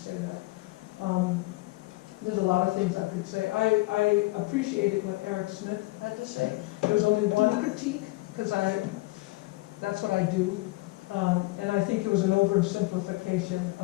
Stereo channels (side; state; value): right; quieter; 22.3 dB